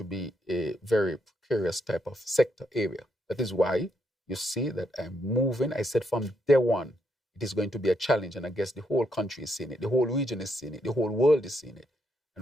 be a very precarious type of sector area. That is why you see that I'm moving. I said from day one, it is going to be a challenge. And I guess the whole country is seeing it. The whole region is seeing it. The whole world is seeing it.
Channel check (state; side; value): normal; both; correlation 0.77